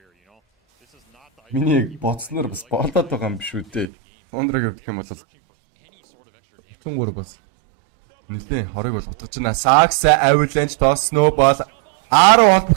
миний боцноор бас болоод байгаа юм биш үү дээ. Тундраг гэх юм бол 33 бас нэлээ хорыг бол утгаж байна. Сакс Avalanche то Snowball 10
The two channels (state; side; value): drops out; left; at 3.9 s